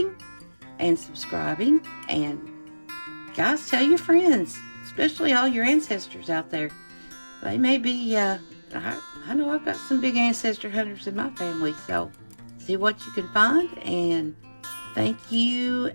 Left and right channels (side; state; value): both; inverted; correlation -1.00